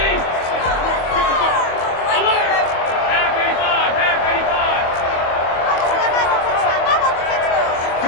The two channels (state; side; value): late; right; 25 ms